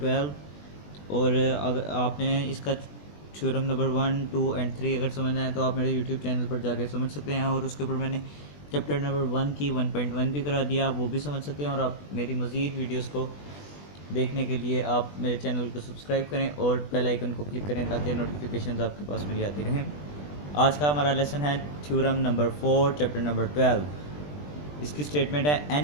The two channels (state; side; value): late; right; 20 ms